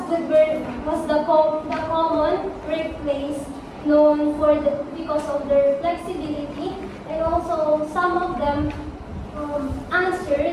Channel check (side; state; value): both; identical; correlation 1.00